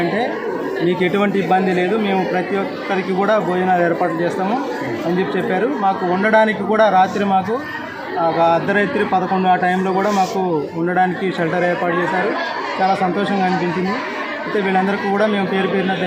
మీకు ఎటువంటి ఇబ్బంది లేదు, మేము ప్రతి ఒక్కరికి కూడా భోజనాలు ఏర్పాటు చేస్తాము అని చెప్పారు. మాకు ఉండడానికి కూడా రాత్రి మాకు ఒక అర్ధరాత్రి 11 ఆ టైంలో కూడా మాకు ఉండడానికి షెల్టర్ ఏర్పాటు చేశారు. చాలా సంతోషంగా అనిపించింది. అయితే వీళ్ళందరికీ కూడా మేము పేరు పేరున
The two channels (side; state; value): both; identical; correlation 1.00